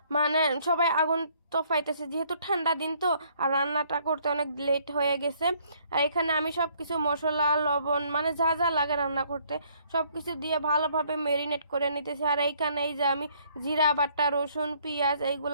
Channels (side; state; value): both; inverted; correlation -0.65